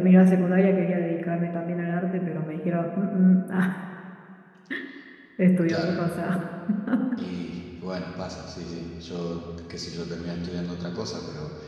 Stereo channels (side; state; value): both; identical; correlation 1.00